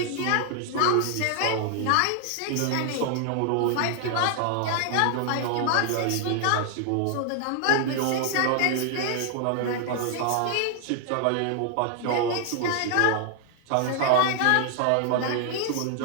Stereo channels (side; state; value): both; different; correlation 0.00